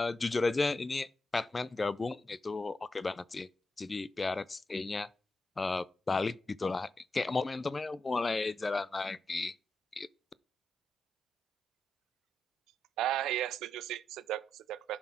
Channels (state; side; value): normal; both; correlation 0.86